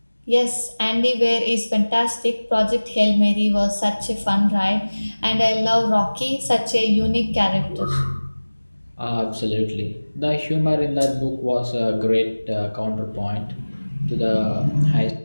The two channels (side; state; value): both; inverted; correlation -1.00